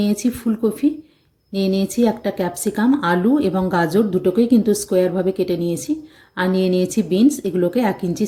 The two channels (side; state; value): both; identical; correlation 1.00